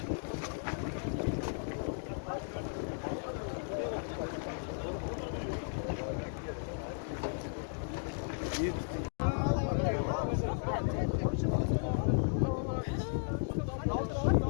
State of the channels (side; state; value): right; silent; digital silence